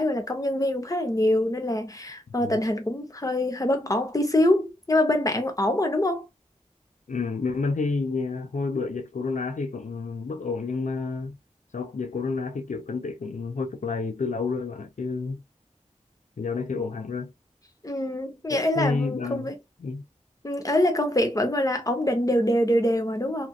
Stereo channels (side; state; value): both; normal; correlation 0.76